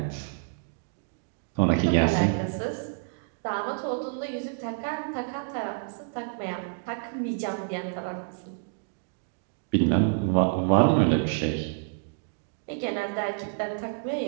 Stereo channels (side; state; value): left; silent; digital silence